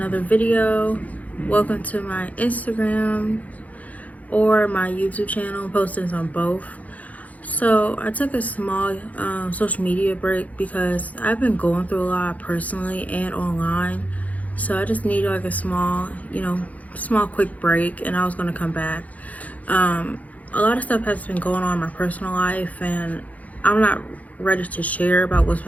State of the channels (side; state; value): right; late; 0.072 ms